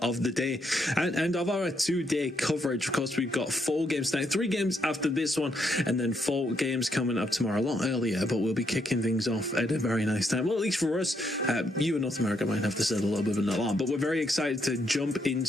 of the day and of our 2-day coverage. Of course, we've got 4 games tonight, 3 games after this one, and then 4 games coming up tomorrow, a lot earlier, but we'll be kicking things off at a very nice time. Well, at least for us, you in North America might have to set a little bit of an alarm, but we're very excited to jump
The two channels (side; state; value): both; normal; correlation 0.77